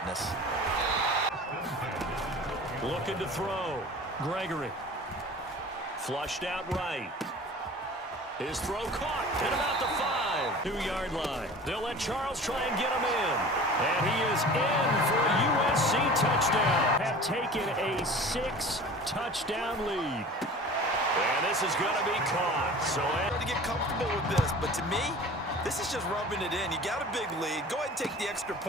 Looking to throw. Gregory. Flushed out right. His throw caught at about the 5-2-yard line. They'll let Charles try and get him in. And he is in for a USC touchdown. Have taken a 6-touchdown lead. And this is going to be caught. So to get comfortable with this, but to me, this is just rubbing it in. You got a big lead. Go ahead and take the extra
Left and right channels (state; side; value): normal; both; correlation 0.41